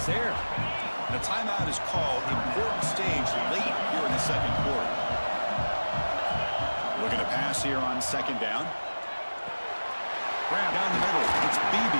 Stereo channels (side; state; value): both; inverted; correlation -1.00